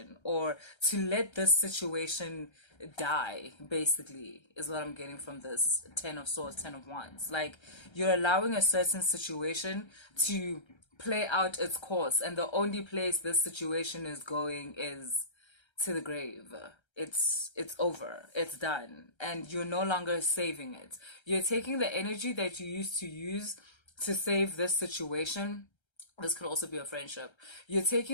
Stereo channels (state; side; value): late; right; 1.3 ms